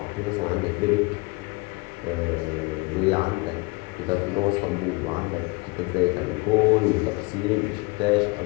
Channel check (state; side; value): quieter; right; 26.6 dB